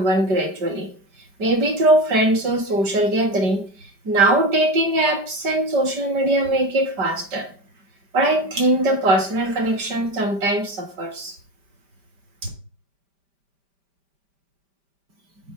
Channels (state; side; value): late; left; 5.1 ms